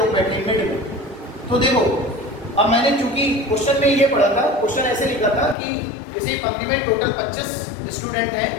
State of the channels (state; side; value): drops out; right; at 5.6 s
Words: बैठे हैं मिड में। तो देखो, अब मैंने चूंकि क्वेश्चन में ये पढ़ा था, क्वेश्चन ऐसे लिखा था कि किसी पंक्ति में टोटल 25 स्टूडेंट हैं,